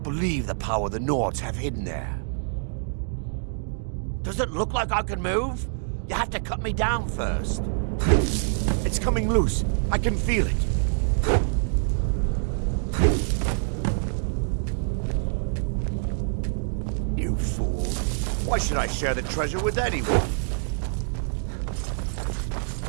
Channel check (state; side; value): silent; left; digital silence